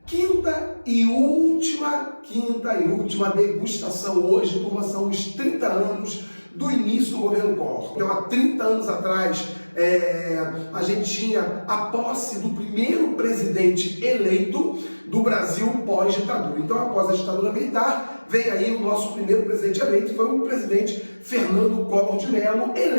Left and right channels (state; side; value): inverted; both; correlation -1.00